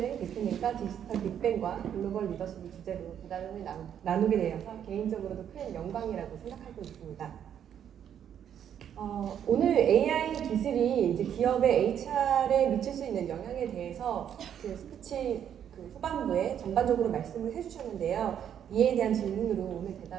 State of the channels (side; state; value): left; quieter; 9.3 dB